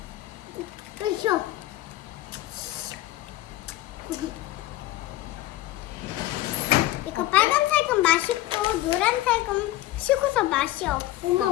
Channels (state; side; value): quieter; right; 16.0 dB